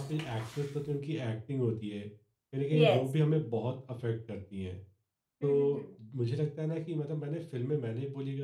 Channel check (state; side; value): identical; both; correlation 1.00